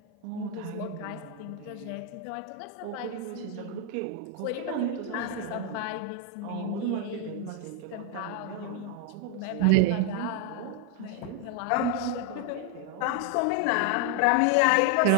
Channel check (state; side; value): different; both; correlation 0.01